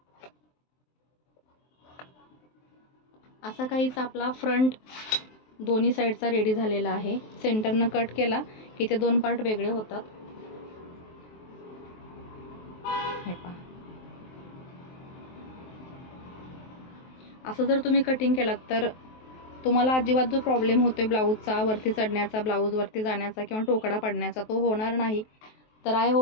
असा काहीच आपला फ्रंट दोन्ही साईडचा रेडी झालेला आहे. सेंटरनं कट केला की ते 2 पार्ट वेगळे होतात. हे पहा, असं जर तुम्ही कटिंग केलात तर तुम्हाला अजिबात जो प्रॉब्लेम होतोय ब्लाऊजचा वरती चढण्याचा, ब्लाऊज वरती जाण्याचा किंवा टोकडा पडण्याचा तो होणार नाही. तर आय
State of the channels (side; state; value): right; late; 23 ms